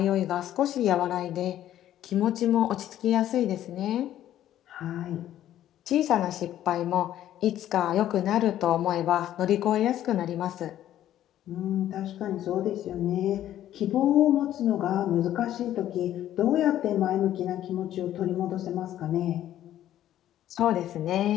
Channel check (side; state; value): right; quieter; 12.2 dB